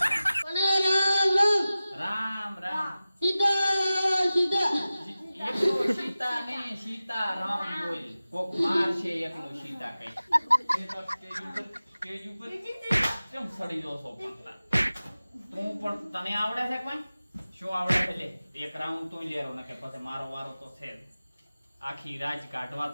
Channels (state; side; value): inverted; both; correlation -0.96